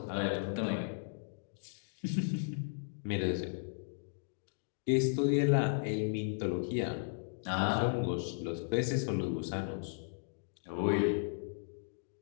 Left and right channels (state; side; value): silent; right; digital silence